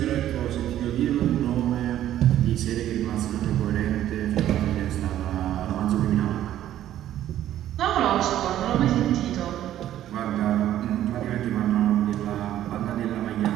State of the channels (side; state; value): left; quieter; 12.2 dB